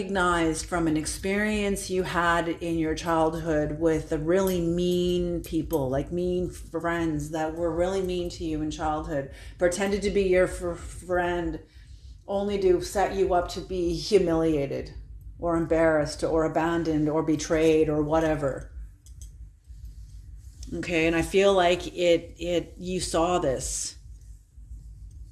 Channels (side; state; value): both; identical; correlation 1.00